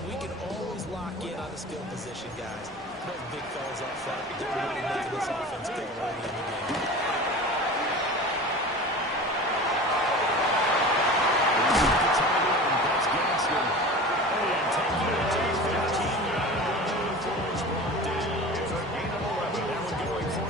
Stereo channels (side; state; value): both; normal; correlation 0.35